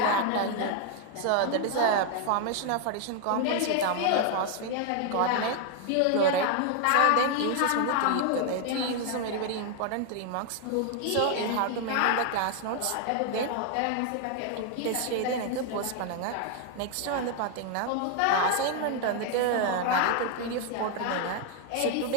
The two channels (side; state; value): both; different; correlation 0.00